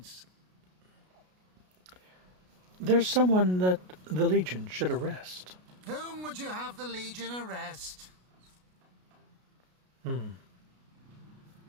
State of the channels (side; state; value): left; late; 33 ms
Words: There's someone that the Legion should arrest. Whom would you have the Legion arrest?